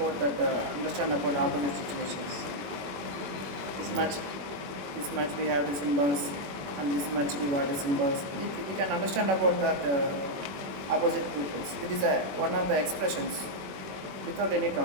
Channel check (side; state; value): left; late; 21 ms